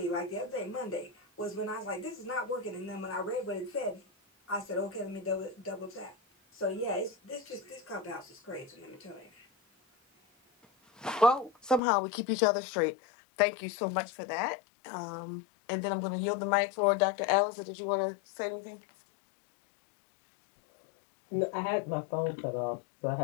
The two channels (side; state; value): right; drops out; at 11.8 s